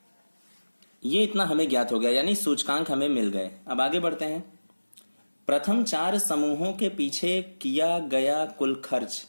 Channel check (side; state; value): both; inverted; correlation -1.00